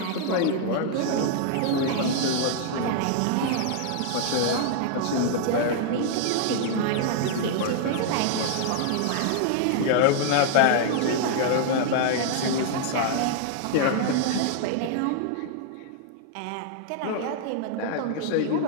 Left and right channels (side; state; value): both; different; correlation -0.01